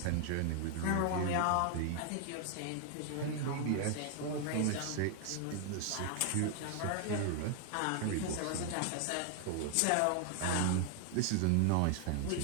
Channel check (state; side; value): different; both; correlation 0.00